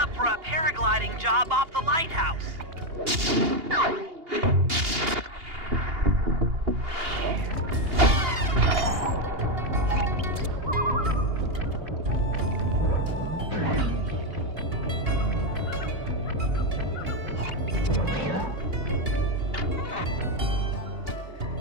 for a paragliding job off the lighthouse.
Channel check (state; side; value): late; left; 2.8 ms